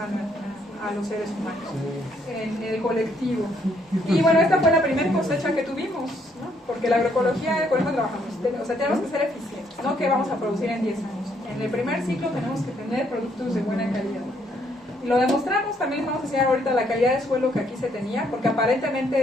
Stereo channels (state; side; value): normal; both; correlation 0.70